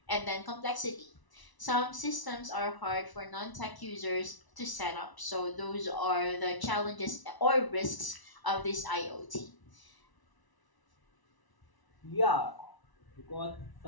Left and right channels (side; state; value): right; late; 1.0 ms